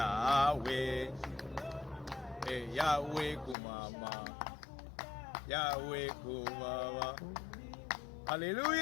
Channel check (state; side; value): drops out; right; at 3.6 s